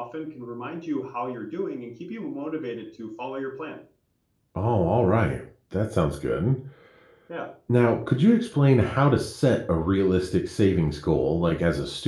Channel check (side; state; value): both; identical; correlation 1.00